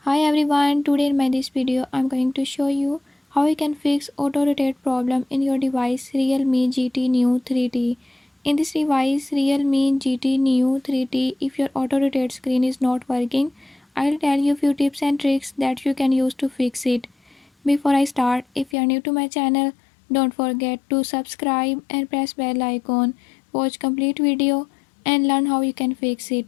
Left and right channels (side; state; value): right; drops out; at 18.8 s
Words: Hi everyone, today in my this video I'm going to show you how you can fix auto rotate problem in your device Realme GT Neo 3T. In this device Realme GT Neo 3T, if your auto rotate screen is not working, I'll tell you few tips and tricks that you can use to fix it. Before I start, if you are new to my channel, don't forget to subscribe and press bell icon. Watch complete video and learn how you can fix